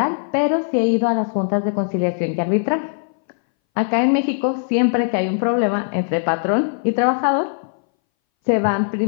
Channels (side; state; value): right; silent; 62 dB below the other